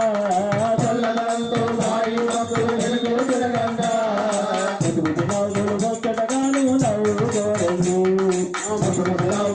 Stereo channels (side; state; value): both; identical; correlation 1.00